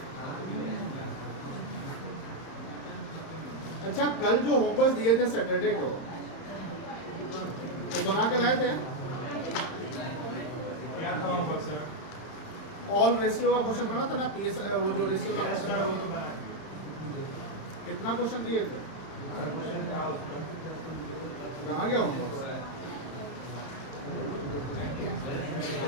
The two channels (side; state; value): right; late; 31 ms